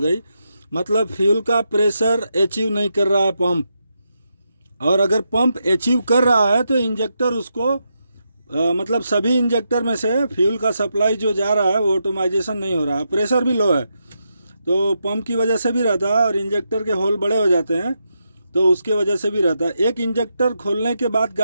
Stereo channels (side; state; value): both; inverted; correlation -0.84